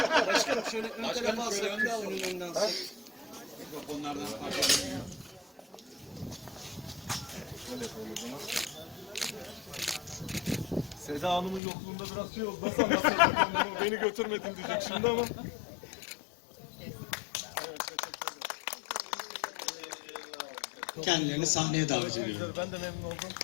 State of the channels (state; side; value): drops out; right; at 11.6 s